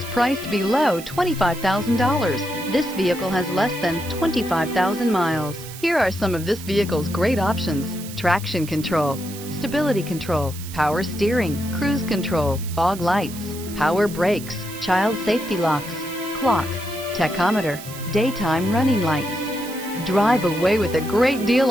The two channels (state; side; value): noise; right; hiss, 14 dB below the sound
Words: priced below $25,000. This vehicle has less than 25,000 miles. Here are some of this vehicle's great options: traction control, stability control, power steering, cruise control, fog lights, power brakes, child safety locks, clock, tachometer, daytime running lights. Drive away with a great deal